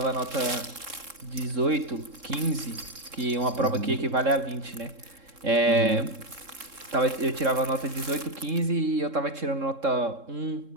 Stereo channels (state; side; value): late; left; 3.7 ms